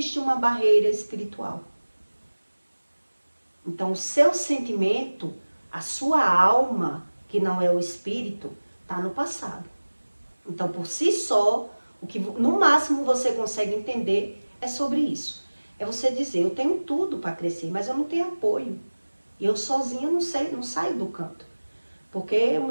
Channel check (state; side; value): inverted; both; correlation -1.00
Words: uma barreira espiritual. Então, o seu sentimento, a sua alma, que não é o espírito, está no passado. Então, por si só, o que no máximo você consegue entender é sobre isso. É você dizer, eu tenho tudo para crescer, mas eu não tenho apoio. E eu sozinha não saio do canto. Porque o